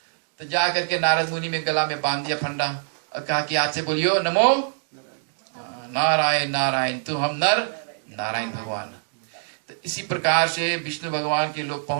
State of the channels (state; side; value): silent; left; digital silence